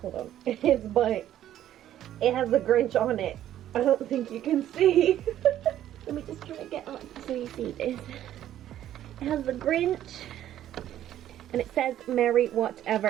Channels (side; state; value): left; quieter; 11.9 dB